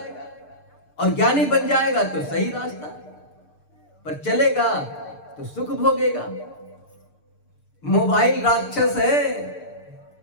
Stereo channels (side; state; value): right; late; 6.7 ms